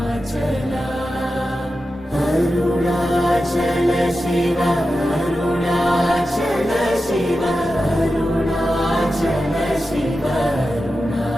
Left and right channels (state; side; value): normal; both; correlation 0.91